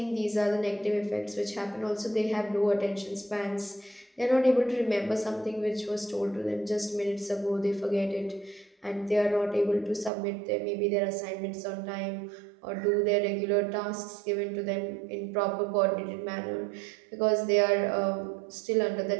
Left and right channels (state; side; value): drops out; left; at 10.1 s